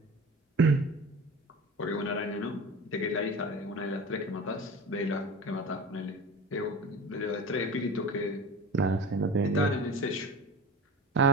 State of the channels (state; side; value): normal; both; correlation 0.34